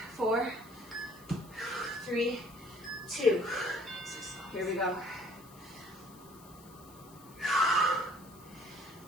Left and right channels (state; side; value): noise; left; hiss, 22 dB below the sound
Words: 4, 3, 2. Here we go.